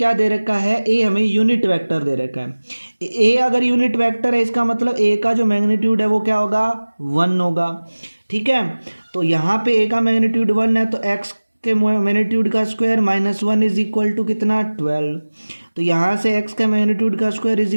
दे रखा है, a हमें यूनिट वेक्टर दे रखा है। a अगर यूनिट वेक्टर है इसका मतलब a का जो मैग्नीट्यूड है वो क्या होगा, 1 होगा। ठीक है, तो यहाँ पे a का मैग्नीट्यूड 1 है, तो x के मैग्नीट्यूड का स्क्वायर -1 इज इक्वल टू कितना, 12, तो यहाँ से x का मैग्नीट्यूड का स्क्वायर इज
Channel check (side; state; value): both; inverted; correlation -1.00